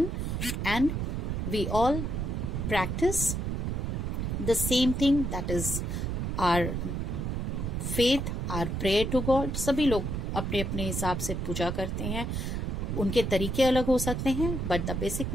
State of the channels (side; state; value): right; noise; rumble, 1 dB below the sound